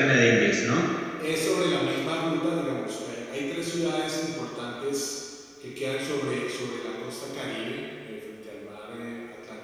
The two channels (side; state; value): both; identical; correlation 1.00